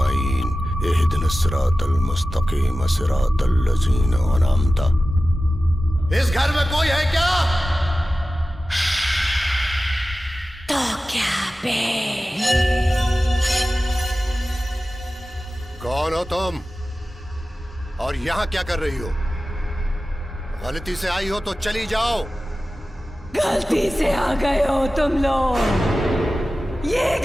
इहदिनस सिरातल मुस्तकीम, सिरातल लज़ीना अनअमता। इस घर में कोई है क्या? तो क्या बे? कौन हो तुम और यहाँ क्या कर रही हो? गलती से आई हो तो चली जाओ। गलती से आ गए हो तुम लोग। ये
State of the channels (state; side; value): normal; both; correlation 0.95